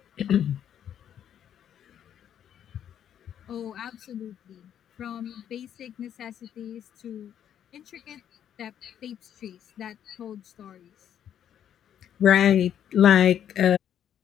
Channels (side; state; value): right; quieter; 9.7 dB